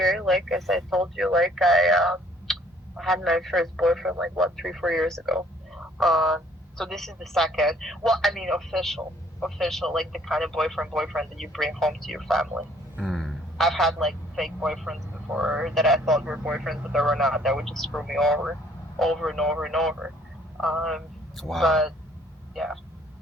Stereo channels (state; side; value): normal; both; correlation 0.60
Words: Like, as I told you, like I had my first boyfriend like what 3 4 years ago. Uh, so this is the second. Well, I mean official, like the kind of boyfriend that you bring home to your family. I've had like fake boyfriends before that I thought were boyfriends, but they were not. That would just screw me over and over and over. Um, Wow. but yeah.